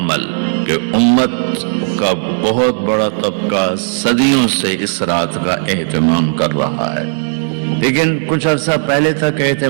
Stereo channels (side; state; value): left; silent; digital silence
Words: کہ امت کا بہت بڑا طبقہ صدیوں سے اس رات کا اہتمام کر رہا ہے، لیکن کچھ عرصہ پہلے تک